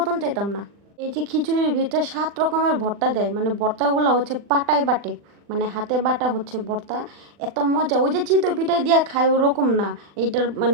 চাইতাম না। এই যে খিচুড়ির ভিতরে 7 রকমের ভর্তা দেয়, মানে ভর্তাগুলো হচ্ছে পাটায় বাটে, মানে হাতে বাটা হচ্ছে ভর্তা। এত মজা, ওই যে চিতই পিঠায় দিয়া খায় ওরকম না, এইটার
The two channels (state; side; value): late; left; 40 ms